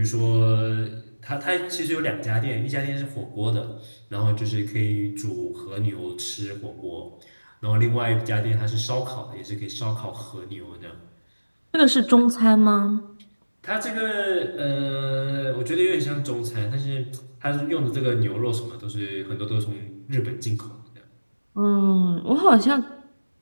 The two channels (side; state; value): both; inverted; correlation -1.00